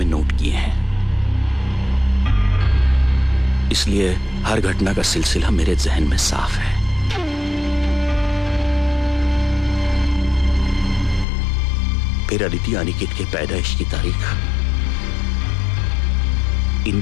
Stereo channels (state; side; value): drops out; right; at 11.2 s